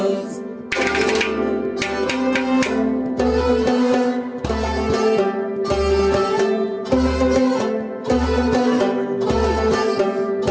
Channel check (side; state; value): both; identical; correlation 1.00